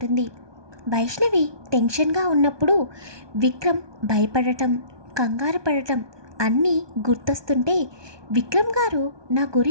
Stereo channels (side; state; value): left; late; 1.2 ms